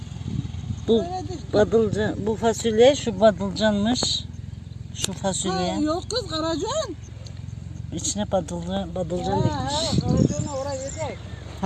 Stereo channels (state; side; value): identical; both; correlation 1.00